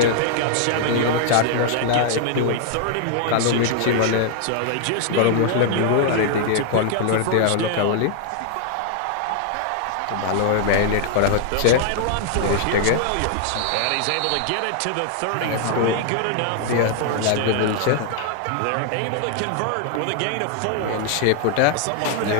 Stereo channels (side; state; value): both; different; correlation 0.00